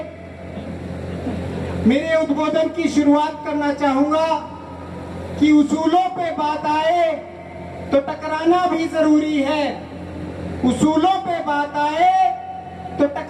मेरे उद्बोधन की शुरुआत करना चाहूंगा कि उसूलों पे बात आए तो टकराना भी जरूरी है, उसूलों पे बात आए तो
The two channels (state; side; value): identical; both; correlation 1.00